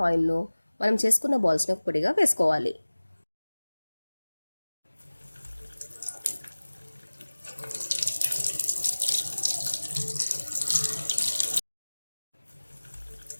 ఆయిల్లో మనం చేసుకున్న బాల్స్ని పొడిగా వేసుకోవాలి.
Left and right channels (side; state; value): both; inverted; correlation -1.00